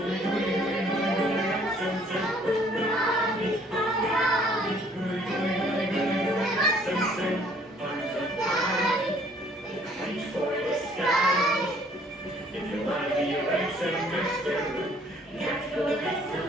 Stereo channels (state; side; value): normal; both; correlation 0.60